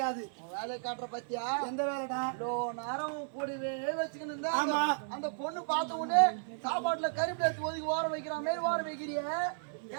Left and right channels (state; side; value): silent; left; 55 dB below the other